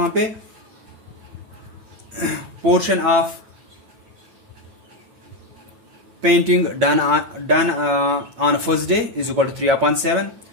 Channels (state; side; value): late; left; 8.8 ms